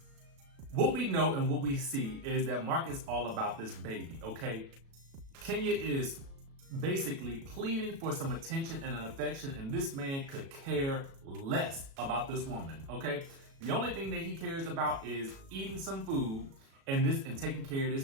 What we know and what we see is that Mark is all about this baby, okay? Kenya is basically pleading for some attention and an affection, and this man could care less about this woman, okay? The only thing that he cares about is eating some food and taking care of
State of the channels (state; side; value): late; left; 36 ms